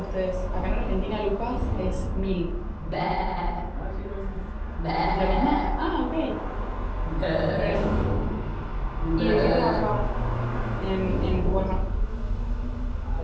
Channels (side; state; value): both; identical; correlation 1.00